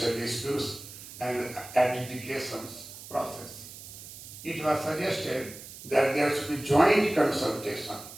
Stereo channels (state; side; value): noise; right; hiss, 14 dB below the sound